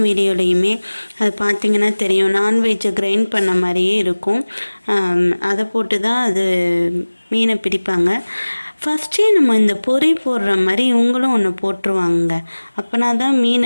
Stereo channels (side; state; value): both; inverted; correlation -1.00